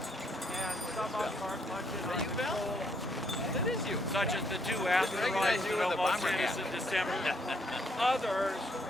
And some of them are much in our control. That is you. Such as the two asteroids that almost hit us in December. Others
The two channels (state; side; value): normal; both; correlation 0.71